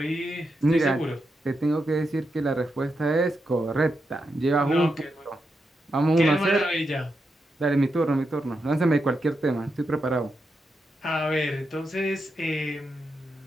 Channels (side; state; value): both; normal; correlation 0.85